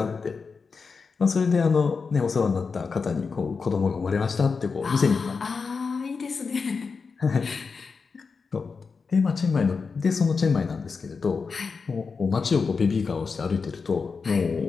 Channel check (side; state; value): right; quieter; 5.0 dB